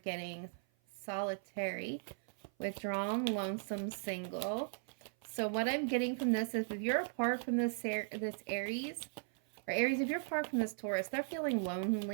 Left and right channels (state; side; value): silent; left; 53 dB below the other